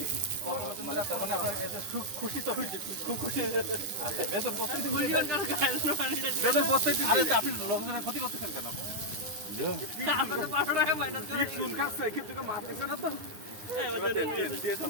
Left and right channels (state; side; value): late; left; 10 ms